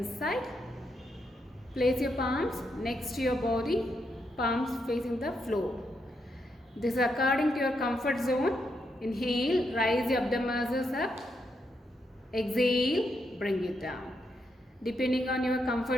Place your palms next to your body, palms facing the floor. This is according to your comfort zone. Inhale, rise your abdomen muscles up. Exhale, bring it down. Depending on your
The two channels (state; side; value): normal; both; correlation 0.81